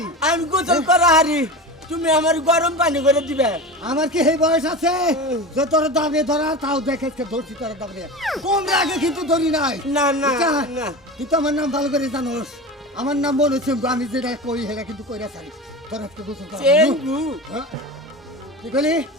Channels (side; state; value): both; normal; correlation 0.28